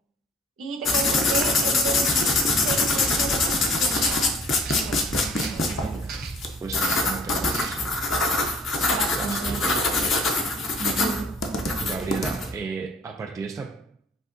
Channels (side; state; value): both; normal; correlation 0.53